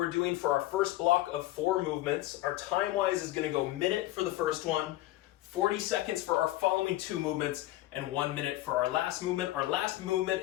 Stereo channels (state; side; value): quieter; right; 16.6 dB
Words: doing for our first block of 4 movements. Our time-wise is gonna go minute for the first one, 40 seconds for our following 2 movements, and 1 minute for our last movement. Our last movement